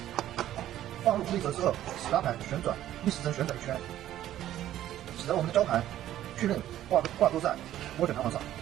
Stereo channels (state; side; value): quieter; left; 12.6 dB